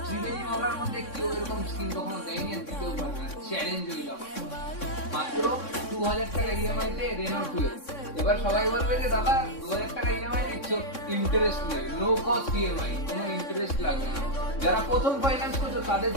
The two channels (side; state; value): right; late; 3.6 ms